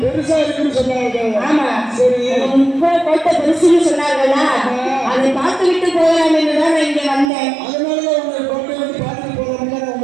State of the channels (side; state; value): left; drops out; at 7.3 s